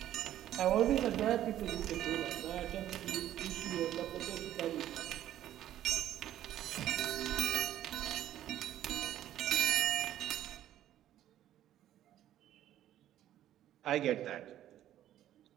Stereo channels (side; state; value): left; quieter; 12.3 dB